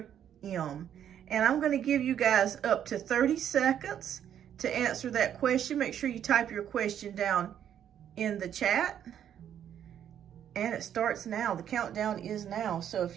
M? And I'm going to give you guys up to 30 seconds to answer that question. Make sure you type your question down in the chat. And it starts now. The countdown is now. So if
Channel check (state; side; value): quieter; left; 9.7 dB